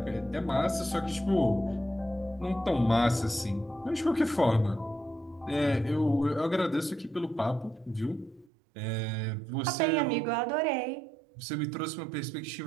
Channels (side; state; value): left; drops out; at 8.5 s